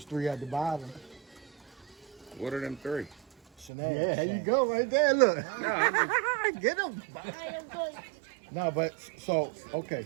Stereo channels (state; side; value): drops out; left; at 3.7 s